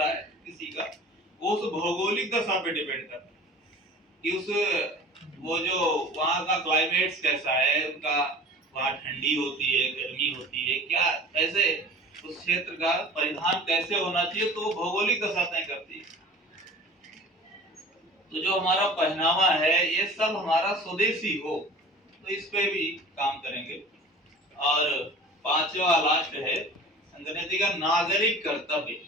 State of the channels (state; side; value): normal; both; correlation 0.42